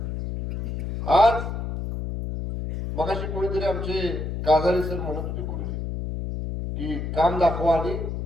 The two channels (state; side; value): noise; left; hum, 4 dB below the sound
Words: आज मगाशी कोणीतरी आमचे काजारी सर म्हणत होते गुरुजी की काम दाखवा आणि